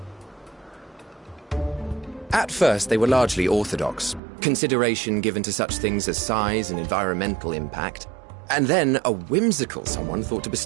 At first, they were largely orthodox, consideration given to such things as size and environmental impact, and then a whimsical someone thought to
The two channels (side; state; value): left; drops out; at 4.2 s